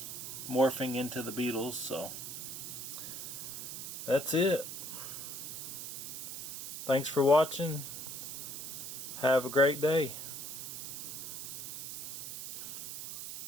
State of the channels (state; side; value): noise; right; hiss, 7 dB below the sound